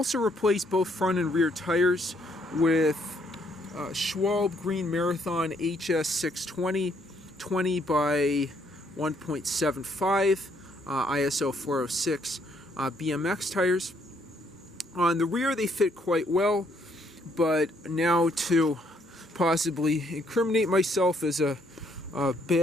replaced both front and rear tires with Schwalbe Green Marathon HS 620 20 by 1.75 ISO 406 BMX tires. On the rear they fit quite well, but now to possibly incriminate myself as a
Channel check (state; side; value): normal; both; correlation 0.69